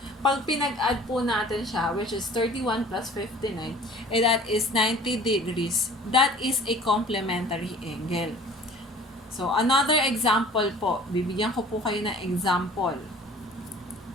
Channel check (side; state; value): both; normal; correlation 0.47